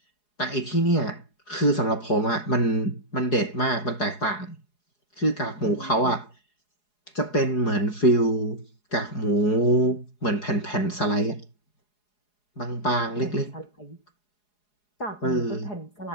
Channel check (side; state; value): right; late; 4.8 ms